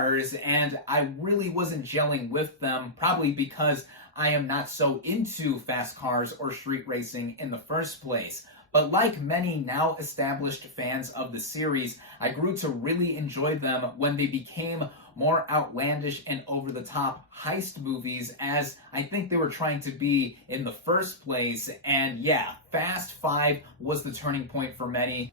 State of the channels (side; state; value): both; normal; correlation -0.10